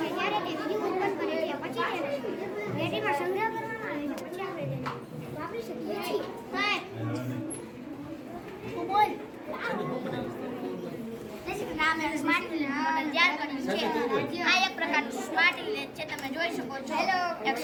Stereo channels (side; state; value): both; identical; correlation 1.00